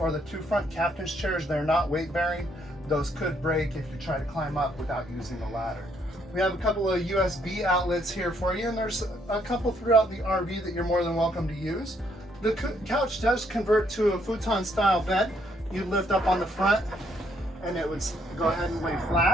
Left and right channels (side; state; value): both; normal; correlation 0.71